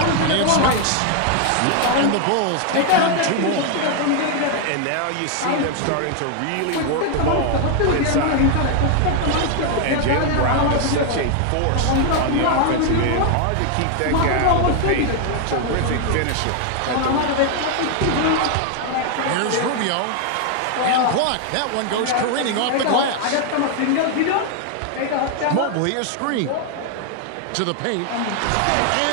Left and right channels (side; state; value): both; different; correlation 0.00